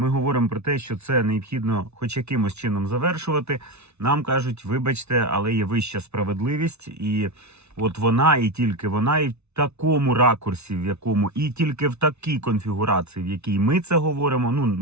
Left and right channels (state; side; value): late; left; 0.81 ms